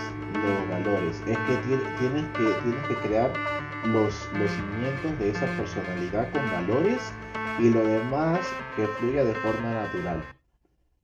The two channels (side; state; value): both; identical; correlation 1.00